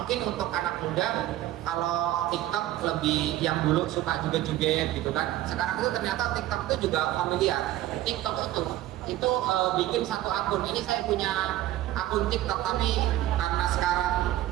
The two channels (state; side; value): quieter; left; 14.5 dB